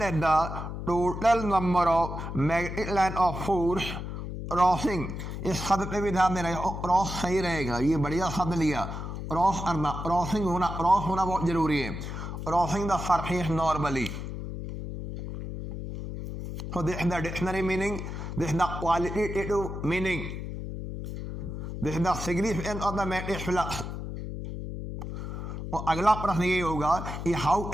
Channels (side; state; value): left; noise; hum, 6 dB below the sound